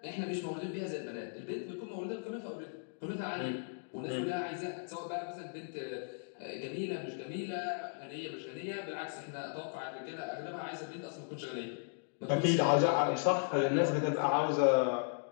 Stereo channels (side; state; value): right; silent; digital silence